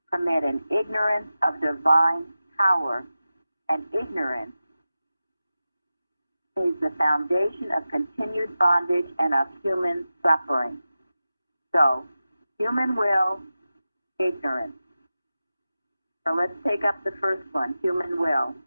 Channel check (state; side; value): inverted; both; correlation -0.94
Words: permit an ignorance of divine power, and ignorance is the foundation of continued bondage and of human suffering. So, human will, ignorance. So let's take up the first one, human will.